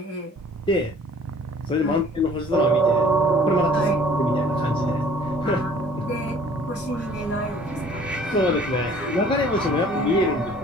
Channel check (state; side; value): normal; both; correlation 0.53